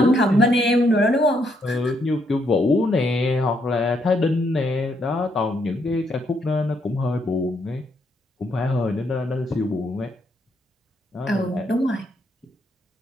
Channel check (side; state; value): both; normal; correlation 0.74